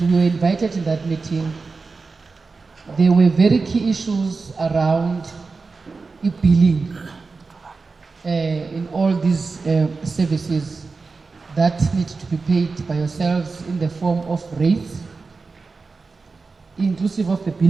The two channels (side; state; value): left; quieter; 4.2 dB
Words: we were invited in that meeting. There were very key issues around billing in all these services that need to be paid by yourselves in the form of rates, inclusive of the